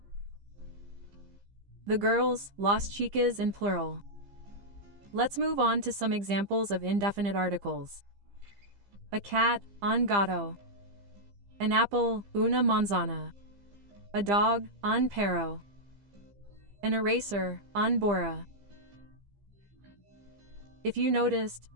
The girls, las chicas in plural. Let's move on to some examples of indefinite articles. A cat, un gato. An apple, una manzana. A dog, un perro. An eraser, un borra. If you noticed,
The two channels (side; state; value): left; late; 15 ms